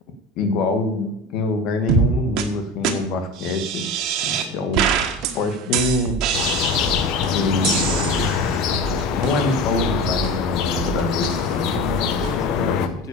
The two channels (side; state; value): both; normal; correlation 0.30